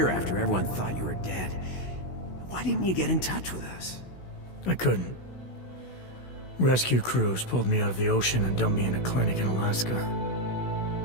after everyone thought you were dead, why didn't you get in touch with us? I couldn't. Rescue crews pulled me out of the ocean and dumped me in a clinic in Alaska.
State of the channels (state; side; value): late; right; 16 ms